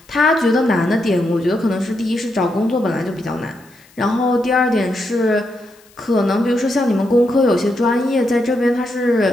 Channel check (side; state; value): left; noise; hiss, 29 dB below the sound